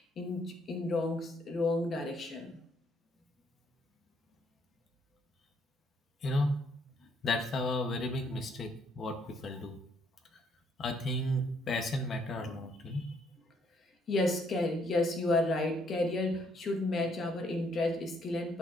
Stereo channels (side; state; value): both; normal; correlation 0.69